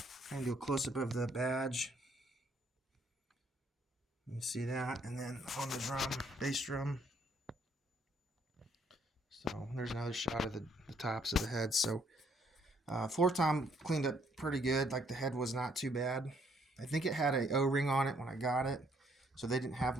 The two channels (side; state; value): both; normal; correlation 0.68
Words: I'm going to do a close-up of the badge. You can see that. And then on the drum, bass drum. So there's another shot of the tops of the heads. So floor tom cleaned up pretty good. Like the head was not too bad. I think it had a O-ring on it when I got it, so they didn't have